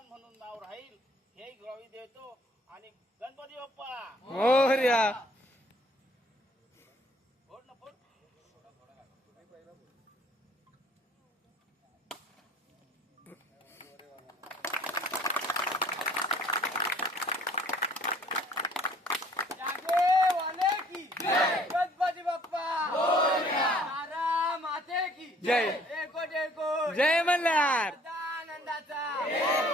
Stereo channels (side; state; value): both; normal; correlation 0.58